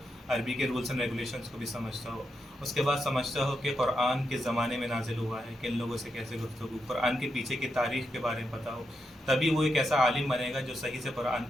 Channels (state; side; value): normal; both; correlation 0.84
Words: अरबी के रूल्स एंड रेगुलेशंस को भी समझता हो। उसके बाद समझता हो कि कुरान किस ज़माने में नाजिल हुआ है, किन लोगों से कैसे गुफ्तगू, कुरान के पीछे की तारीख़ के बारे में पता हो। तभी वो एक ऐसा आलिम बनेगा जो सही से कुरान